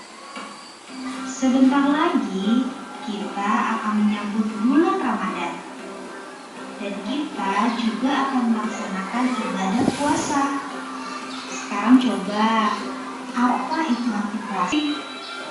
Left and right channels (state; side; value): identical; both; correlation 1.00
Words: Sebentar lagi kita akan menyambut bulan Ramadan dan kita juga akan melaksanakan ibadah puasa. Sekarang coba, apa itu arti puasa?